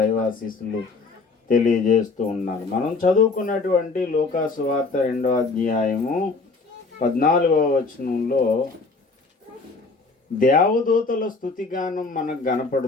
తెలియజేస్తూ ఉన్నాను. మనం చదువుకున్నటువంటి లూకా సువార్త 2వ అధ్యాయము 14వ వచనంలో దేవదూతల స్తుతిగానం మనకు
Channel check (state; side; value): quieter; right; 4.0 dB